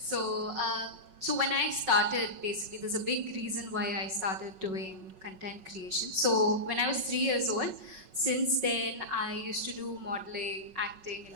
when I started, basically, there's a big reason why I started doing content creation. So when I was 3 years old, Since then, I used to do modeling, acting,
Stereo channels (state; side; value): late; left; 5.4 ms